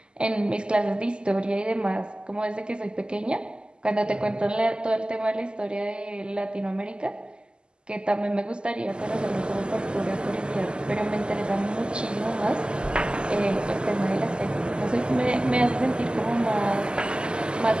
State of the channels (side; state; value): left; late; 0.048 ms